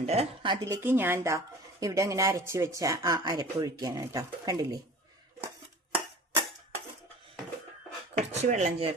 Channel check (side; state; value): both; normal; correlation 0.41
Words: അതിലേക്ക് ഞാൻ ഇവിടെ അങ്ങനെ അരച്ച് വെച്ച ആ അരപ്പൊഴിക്കുകയാണ് കേട്ടോ. കണ്ടില്ലേ, കുറച്ച് വെള്ളം